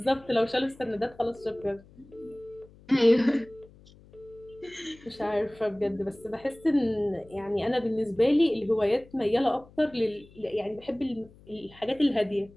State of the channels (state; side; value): noise; left; hum, 24 dB below the sound